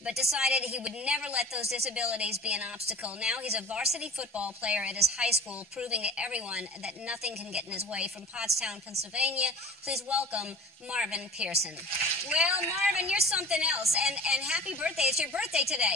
but decided he would never let those disabilities be an obstacle. Now he's a varsity football player at his high school, proving to everyone that nothing can get in his way. From Pottstown, Pennsylvania, please welcome Marvin Pearson. Well, Marvin, you're something else, and happy birthday. It's your birthday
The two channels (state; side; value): normal; both; correlation 0.39